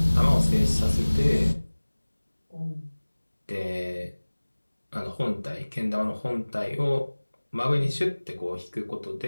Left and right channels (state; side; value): inverted; both; correlation -1.00